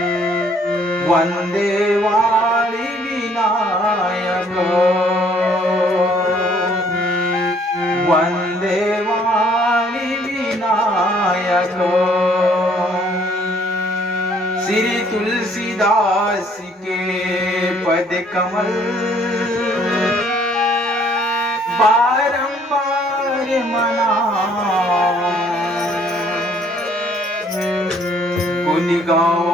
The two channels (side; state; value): both; normal; correlation 0.62